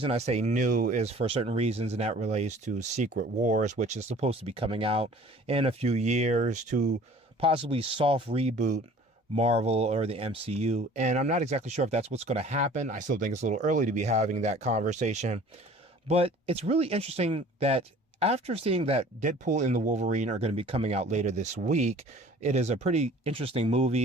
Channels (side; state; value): both; normal; correlation 0.49